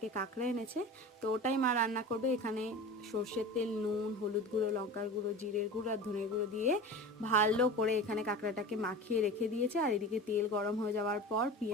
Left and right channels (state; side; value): normal; both; correlation 0.33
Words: কাঁকড়া এনেছে। তো ওটাই মা রান্না করবে। এখানে সর্ষের তেল, নুন, হলুদ গুঁড়ো, লঙ্কার গুঁড়ো, জিরের গুঁড়ো আর ধনের গুঁড়ো দিয়ে ভালো করে এখানে কাঁকড়াটাকে মাখিয়ে রেখে দিয়েছে। আর এদিকে তেল গরম হয়ে যাওয়ার পর